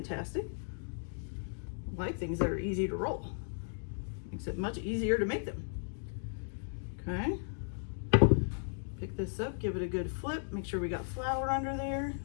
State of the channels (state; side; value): silent; right; digital silence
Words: I like things that are easy to roll. Makes it much easier to make them. Okay. Pick this up, give it a good flip. Make sure we got flour under there.